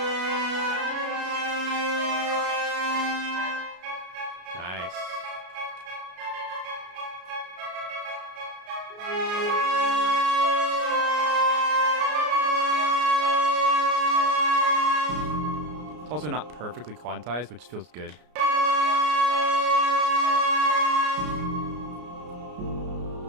Nice. It's also not perfectly quantized, which feels good.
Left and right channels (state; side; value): late; left; 33 ms